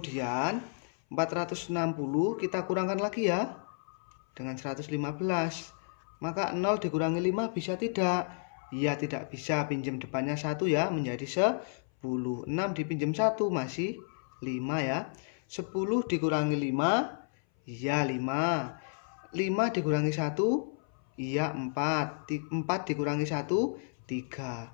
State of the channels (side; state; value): right; silent; 57 dB below the other